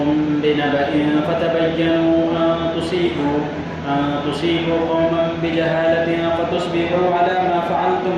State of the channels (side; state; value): both; identical; correlation 1.00